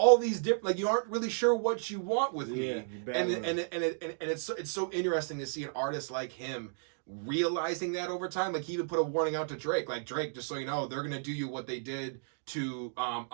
these different, like you aren't really sure what you want with me, and it's so interesting to see an artist like him realizing that over time. Like he even put a warning out to Drake, like, "Drake, just so you know, they're gonna do you what they did to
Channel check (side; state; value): left; silent; digital silence